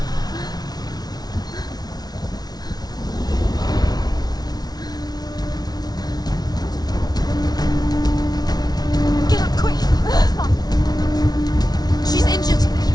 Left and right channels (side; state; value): right; late; 0.19 ms